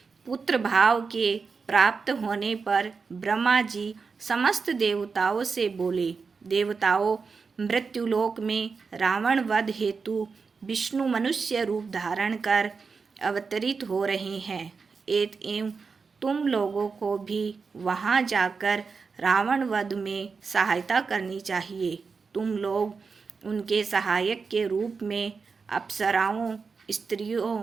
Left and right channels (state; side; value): quieter; left; 5.0 dB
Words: पुत्र भाव के प्राप्त होने पर ब्रह्मा जी समस्त देवताओं से बोले, देवताओं, मृत्युलोक में रावण वध हेतु विष्णु मनुष्य रूप धारण कर अवतरित हो रहे हैं। एवं तुम लोगों को भी वहां जाकर रावण वध में सहायता करनी चाहिए। तुम लोग उनके सहायक के रूप में अप्सराओं, स्त्रियों,